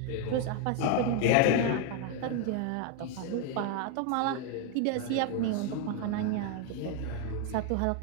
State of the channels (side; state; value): both; different; correlation 0.01